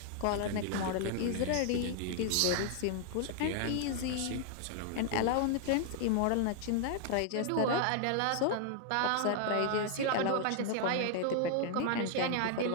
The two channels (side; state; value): both; different; correlation 0.00